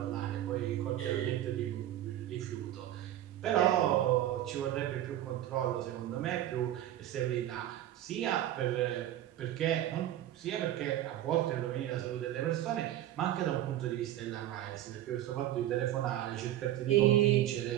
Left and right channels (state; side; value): quieter; left; 12.8 dB